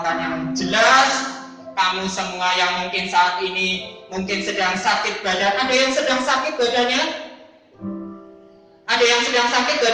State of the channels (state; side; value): identical; both; correlation 1.00